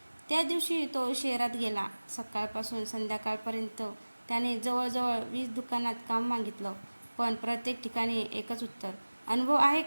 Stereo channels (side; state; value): both; inverted; correlation -1.00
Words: त्या दिवशी तो शहरात गेला. सकाळपासून संध्याकाळपर्यंत त्याने जवळजवळ 20 दुकानात काम मागितलं, पण प्रत्येक ठिकाणी एकच उत्तर, अनुभव आहे